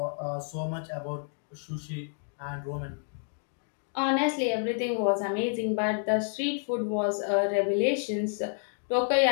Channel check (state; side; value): silent; right; 58 dB below the other